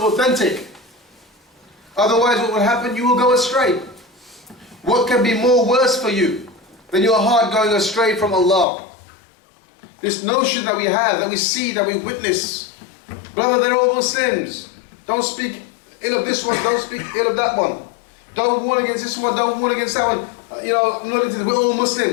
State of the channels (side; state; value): right; drops out; at 8.7 s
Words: Otherwise, what will happen? You will go astray. What can be more worse for you than your heart going astray from Allah? This notion that we have, that we see, that we witness. Brother, they're all Muslims. Don't speak ill of this one, don't speak ill of that one. Don't warn against this one, don't warn against that one. I'm not into this. We're all